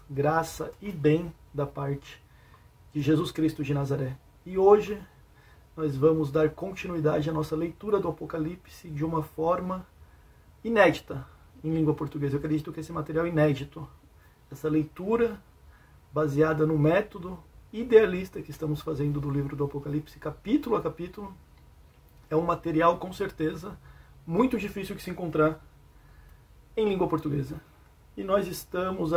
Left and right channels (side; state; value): both; identical; correlation 1.00